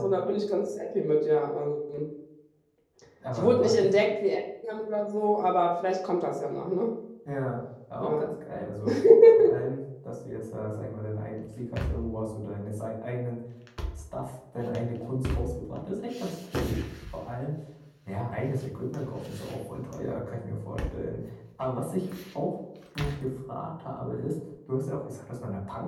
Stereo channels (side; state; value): both; identical; correlation 1.00